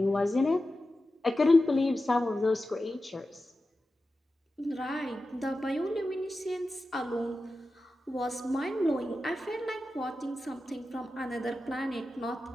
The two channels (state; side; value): normal; both; correlation 0.93